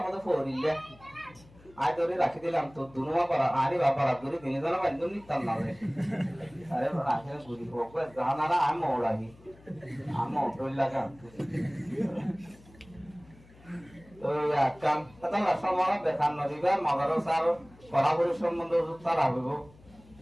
মতে ফরিলে আই তোরে রাখি দিলাম তো দুনুমা পারা আরে বাবা রাতুরি দিনে জানা বান্দু নিতাম না রে আরে রাখে গুরি বকো জানারা আম ওড়াহি আম ওড়ল লাগা তো কাম তাহলে সমারা দেখান নদিবা মাদ্রাসার পড়াশোনার সম্বন্ধে তারা হইব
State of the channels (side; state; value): left; noise; hum, 24 dB below the sound